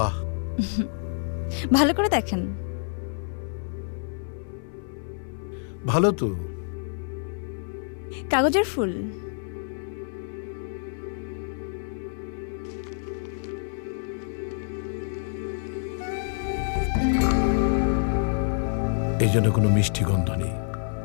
ভালো করে দেখেন। ভালো তো। কাগজের ফুল। এই জন্য কোনো মিষ্টি গন্ধ নেই।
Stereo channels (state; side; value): silent; right; 60 dB below the other